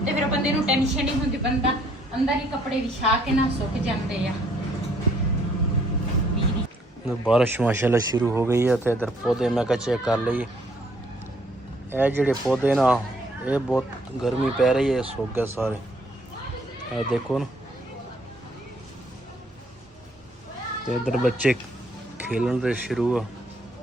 ਤੇ ਫਿਰ ਬੰਦੇ ਨੂੰ ਟੈਨਸ਼ਨ ਨਹੀਂ ਹੁੰਦੀ, ਬੰਦਾ ਅੰਦਰ ਹੀ ਕੱਪੜੇ ਵਿਛਾ ਕੇ ਨਾ ਸੁੱਕ ਜਾਂਦੇ ਆ। बारिश माशाल्लाह शुरू हो गई है तो इधर पौधे मैं चेक कर ली। ये जेडे पौधे ना ये बहुत गर्मी पै रही है, सूख गए सारे। ये देखो ना, तो इधर बच्चे खेलन से शुरू है।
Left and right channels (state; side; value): normal; both; correlation 0.65